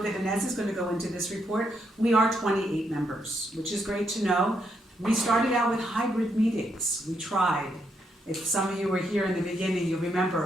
Inez is going to go into this report. We are 28 members, which is great to know. We started out with hybrid meetings. We tried. If some of you were here in the beginning, you'll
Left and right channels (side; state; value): both; normal; correlation 0.78